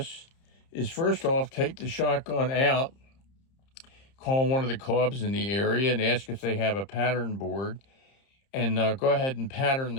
is, first off, take the shotgun out, call one of the clubs in the area and ask if they have a pattern board, and go ahead and pattern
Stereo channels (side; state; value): right; late; 30 ms